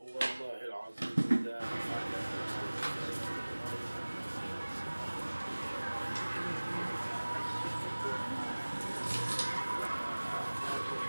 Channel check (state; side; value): inverted; both; correlation -1.00